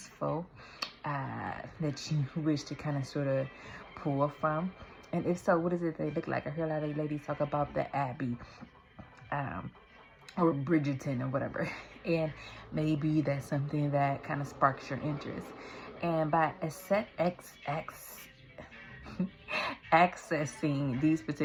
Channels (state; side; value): identical; both; correlation 1.00